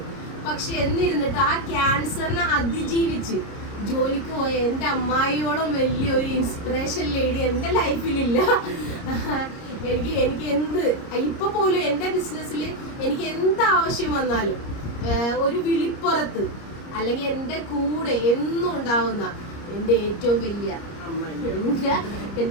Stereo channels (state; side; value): late; right; 30 ms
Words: പക്ഷെ എന്നിരുന്നിട്ട് ആ ക്യാൻസറിനെ അതിജീവിച്ച് ജോലിക്ക് പോയ എൻ്റെ അമ്മായിയോളം വലിയൊരു ഇൻസ്പിറേഷൻ ലേഡി എൻ്റെ ലൈഫിലില്ല. എനിക്ക് എന്ത് ഇപ്പൊ പോലും എൻ്റെ ബിസിനസ്സിൽ എനിക്ക് എന്ത് ആവശ്യം വന്നാലും ഒരു വിളിപ്പുറത്ത് അല്ലെങ്കിൽ എൻ്റെ കൂടെ എന്നും ഉണ്ടാവുന്ന എൻ്റെ ഏറ്റവും വലിയ